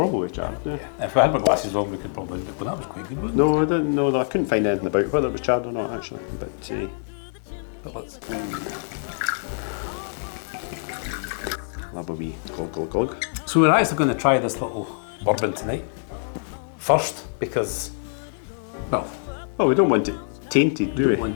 charred. Yeah. If we had my glasses on, we could probably. Well, that was quite good, wasn't it? No, I didn't know that. I couldn't find anything about whether it was charred or not actually. But let's. I'll have a wee glug. So we're actually going to try this little bourbon tonight. First, because, well, Oh, we don't want it tainted, do we?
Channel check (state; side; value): silent; right; digital silence